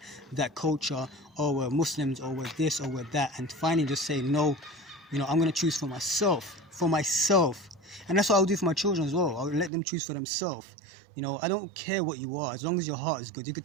culture, or we're Muslims, or we're this, or we're that, and finally just say no. You know, I'm gonna choose for myself, and that's what I'll do for my children as well. I'll let them choose for themselves. You know, I don't care what you are, as long as your heart is good. You could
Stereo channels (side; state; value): left; drops out; at 9.7 s